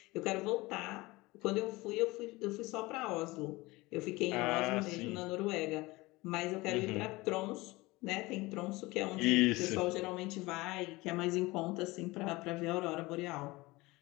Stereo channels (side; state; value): right; quieter; 21.7 dB